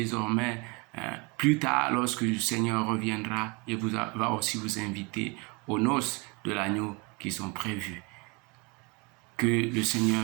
plus tard, lorsque le Seigneur reviendra, il va aussi vous inviter aux noces de l'agneau qui sont prévues. Que le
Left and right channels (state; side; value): quieter; left; 29.1 dB